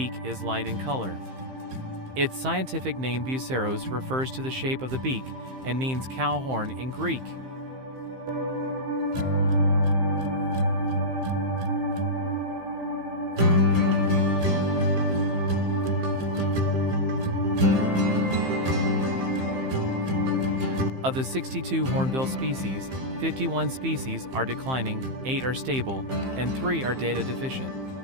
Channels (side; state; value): left; late; 15 ms